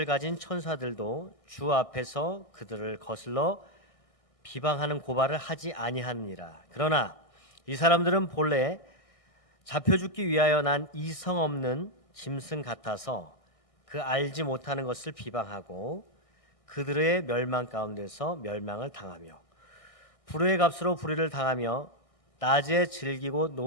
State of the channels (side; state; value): right; late; 1.6 ms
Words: 가진 천사들도 주 앞에서 그들을 거슬러 비방하는 고발을 하지 아니하느니라. 그러나 이 사람들은 본래 잡혀 죽기 위하여 난 이성 없는 짐승 같아서 그 알지 못하는 것을 비방하고 그들의 멸망 가운데서 멸망을 당하며 불의의 값으로 불의를 당하며 낮에 즐기고